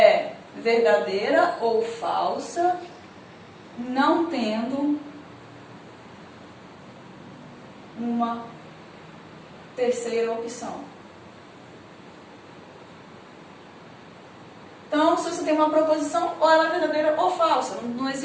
verdadeira ou falsa, não tendo uma terceira opção. Então, se você tem uma proposição, ou ela é verdadeira ou falsa. Não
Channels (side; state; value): both; identical; correlation 1.00